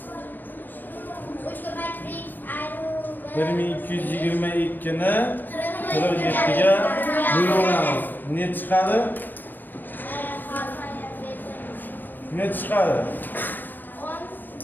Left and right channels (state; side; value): late; right; 0.088 ms